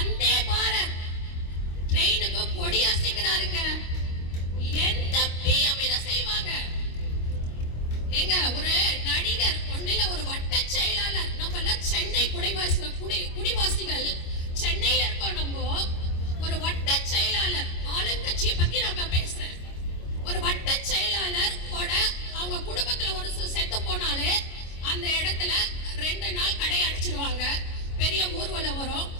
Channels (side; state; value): right; late; 25 ms